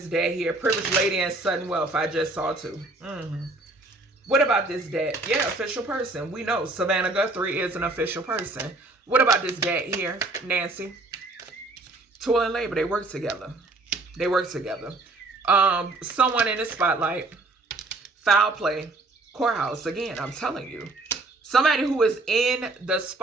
dad here? Privileged lady and sudden wealth. I just saw too. What about this dad? Yeah, official person. We know Savannah Guthrie is an official person. What about this dad here? Nancy. Toil and labor. They work together. They work together. Someone in the spotlight. Foul play. Courthouse. Again, I'm telling you. Somebody who is in the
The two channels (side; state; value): left; quieter; 3.1 dB